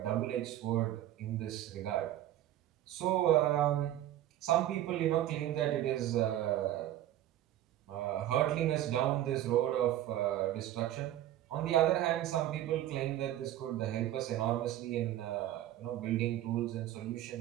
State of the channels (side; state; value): left; quieter; 12.9 dB